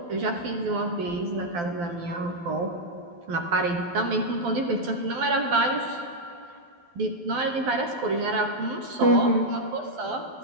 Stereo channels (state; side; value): late; left; 12 ms